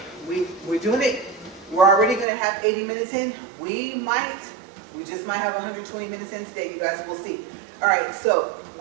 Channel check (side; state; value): left; drops out; at 2.2 s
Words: we're doing it. We're already going to have 80 minutes in. We just might have 120 minutes in today, you guys. We'll see. All right, so